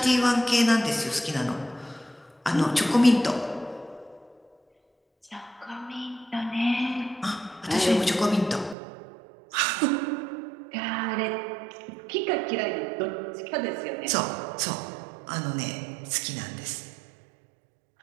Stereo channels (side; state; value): left; drops out; at 8.8 s